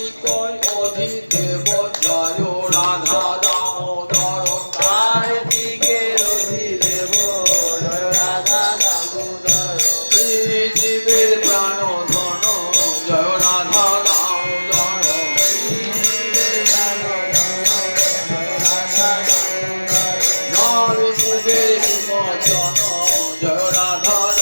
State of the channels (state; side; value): inverted; both; correlation -1.00